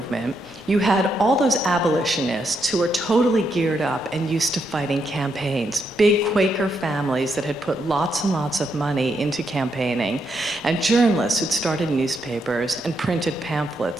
you had all those abolitionists who were totally geared up and used to fighting campaigns, big Quaker families that had put lots and lots of money into campaigning, and journalists who'd started newspapers and printed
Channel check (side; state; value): both; normal; correlation 0.79